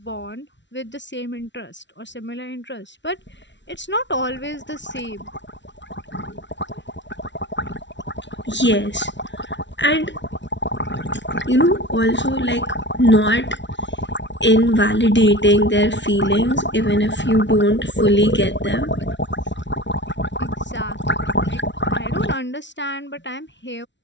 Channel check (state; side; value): late; right; 0.52 ms